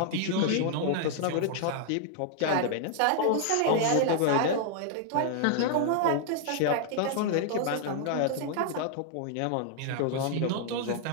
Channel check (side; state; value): both; different; correlation 0.00